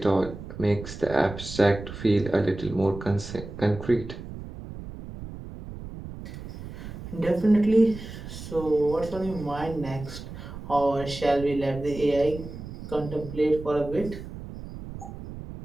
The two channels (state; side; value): noise; right; rumble, 11 dB below the sound